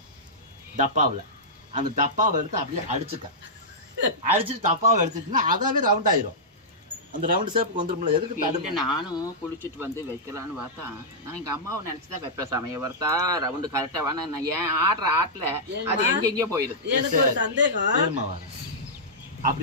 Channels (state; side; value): normal; both; correlation -0.11